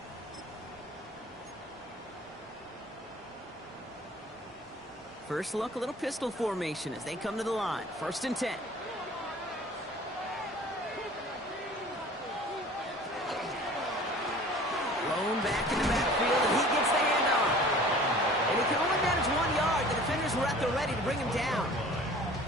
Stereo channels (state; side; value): normal; both; correlation 0.46